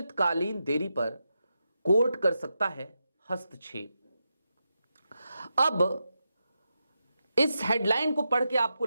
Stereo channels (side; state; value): both; inverted; correlation -0.87